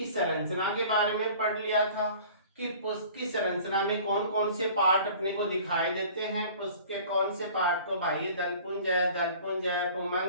संरचना के बारे में पढ़ लिया था कि पुष्प की संरचना में कौन कौन से पार्ट अपने को दिखाई देते हैं। पुष्प के कौन से पार्ट को बाह्य दलपुंज है,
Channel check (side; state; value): both; inverted; correlation -0.46